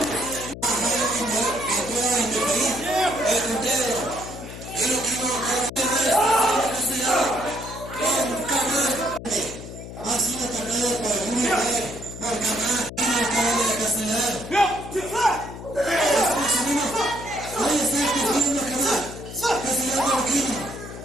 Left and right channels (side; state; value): left; noise; hum, 12 dB below the sound